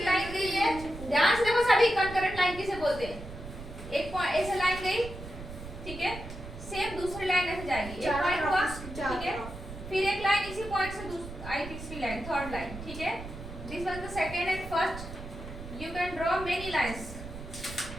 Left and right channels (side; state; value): right; noise; rumble, 11 dB below the sound